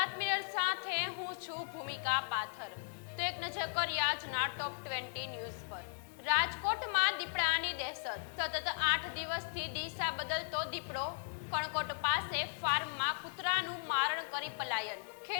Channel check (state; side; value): silent; right; digital silence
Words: mirror સાથે હું છું ભૂમિકા પાથર। તો એક નજર કરીએ આજના ટોપ 20 ન્યૂઝ પર। રાજકોટમાં દીપડાની દહેશત। સતત 8 દિવસથી દિશા બદલતો દીપડો। કણકોટ પાસે ફાર્મમાં કૂતરાનું મારણ કરી પલાયન।